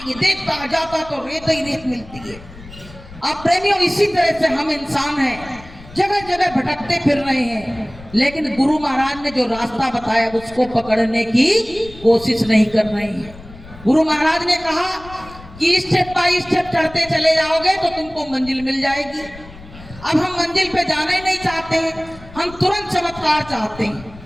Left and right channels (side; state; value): left; noise; rumble, 18 dB below the sound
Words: है, देखता जाता तो रेत ही रेत मिलती है। अब प्रेमियों, इसी तरह से हम इंसान हैं, जगह जगह भटकते फिर रहे हैं, लेकिन गुरु महाराज ने जो रास्ता बताया उसको पकड़ने की कोशिश नहीं कर रहे हैं। गुरु महाराज ने कहा कि स्टेप बाय स्टेप चढ़ते चले जाओगे तो तुमको मंजिल मिल जाएगी। अब हम मंजिल पे जाना ही नहीं चाहते हैं, हम तुरंत चमत्कार चाहते हैं।